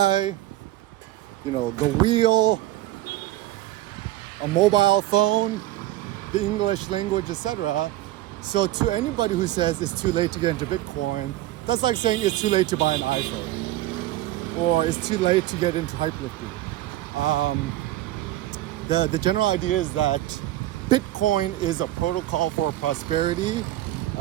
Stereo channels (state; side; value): quieter; left; 15.5 dB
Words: you know, the wheel, a mobile phone, the English language, etc. So to anybody who says it's too late to get into Bitcoin, that's like saying it's too late to buy an iPhone, or it's too late to get into hyperlifting. The general idea is that Bitcoin is a protocol for prosperity.